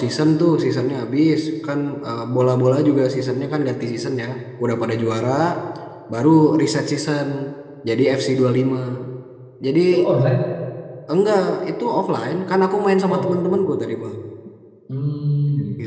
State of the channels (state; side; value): identical; both; correlation 1.00